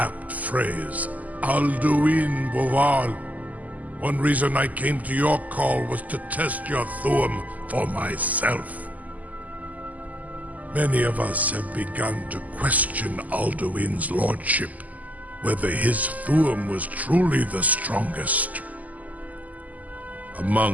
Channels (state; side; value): late; left; 0.078 ms